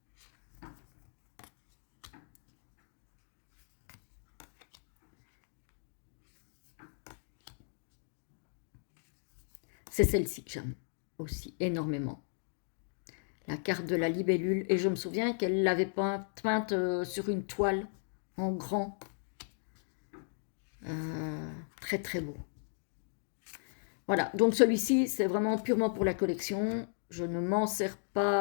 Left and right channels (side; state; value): right; silent; digital silence